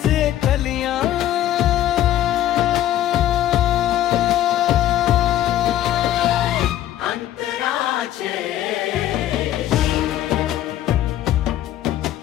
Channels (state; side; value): quieter; right; 12.6 dB